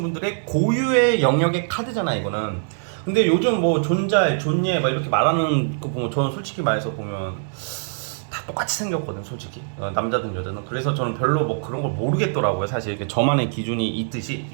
분들의 고유의 영역의 카드잖아, 이거는. 근데 요즘 뭐 존잘 존예 막 이렇게 말하는 거 보면 저는 솔직히 말해서 보면 다 똑같이 생겼거든, 솔직히. 남자든 여자든. 그래서 저는 별로 뭐 그런 걸 모르겠더라고요. 사실 이렇게 저만의 기준이 있듯이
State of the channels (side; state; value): left; silent; digital silence